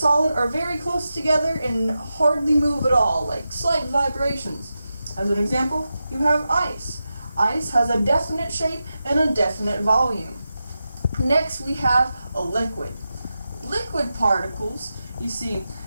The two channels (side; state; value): both; inverted; correlation -0.91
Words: are very close together and hardly move at all, like slight vibrations. As an example, you have ice. Ice has a definite shape and a definite volume. Next, we have a liquid. Liquid particles, you see,